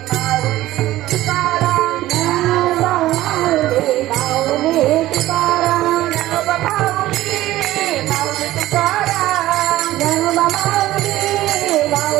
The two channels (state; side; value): quieter; left; 15.7 dB